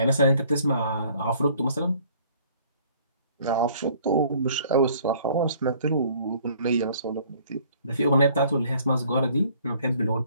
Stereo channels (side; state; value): both; inverted; correlation -0.58